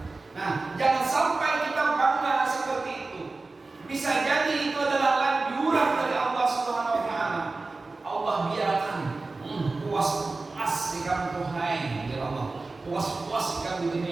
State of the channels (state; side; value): quieter; left; 3.5 dB